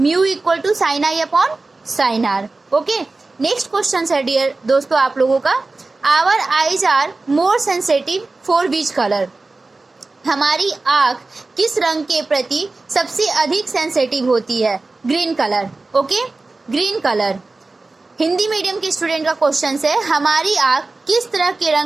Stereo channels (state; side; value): quieter; left; 3.4 dB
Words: equal to sine i upon sine r. Okay, next question है डियर दोस्तों आप लोगों का, our eyes are more sensitive for which colour. हमारी आंख किस रंग के प्रति सबसे अधिक सेंसिटिव होती है? Green colour. Okay, green colour. Hindi medium के स्टूडेंट का क्वेश्चन है, हमारी आंख किस तरह के